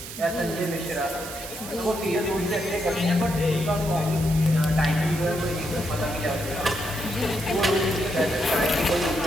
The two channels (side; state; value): right; noise; hiss, 11 dB below the sound